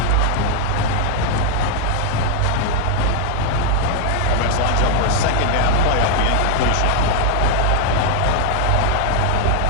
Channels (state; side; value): different; both; correlation 0.01